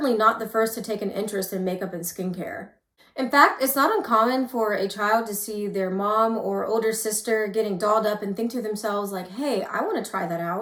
not the first to take an interest in makeup and skincare. In fact, it's not uncommon for a child to see their mom or older sister getting dolled up and think to themselves like, hey, I want to try that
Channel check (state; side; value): identical; both; correlation 1.00